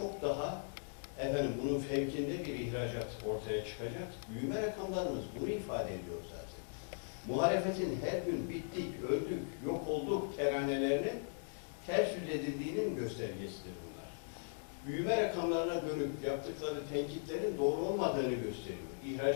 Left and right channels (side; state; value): right; silent; digital silence